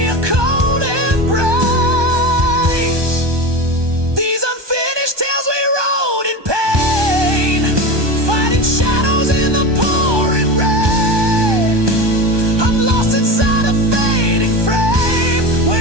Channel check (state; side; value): late; left; 1.2 ms